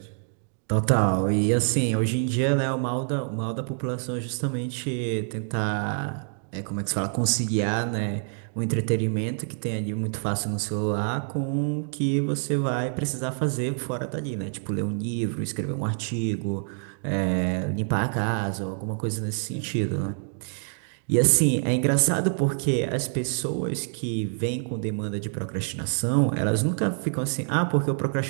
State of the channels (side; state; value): left; silent; 61 dB below the other